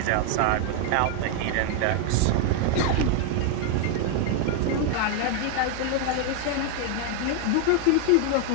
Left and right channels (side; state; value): both; different; correlation 0.00